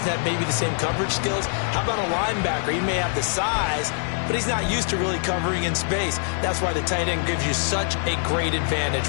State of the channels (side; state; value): right; silent; 60 dB below the other